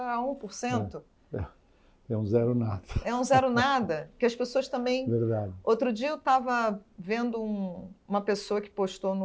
É um zero nada. É um zero nada, que as pessoas também... Verdade. Outro dia eu estava vendo uma pessoa que postou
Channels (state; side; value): identical; both; correlation 1.00